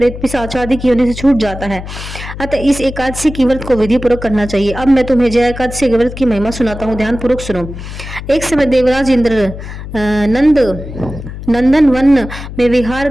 पिशाच आदि की होने से छूट जाता है। अतः इस एकादशी की व्रत को विधि पूर्वक करना चाहिए। अब मैं तुम्हें जय एकादशी के व्रत की महिमा सुनाता हूँ, ध्यान पूर्वक सुनो। एक समय देवराज इंद्र नंदन वन में विहार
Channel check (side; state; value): left; noise; hum, 10 dB below the sound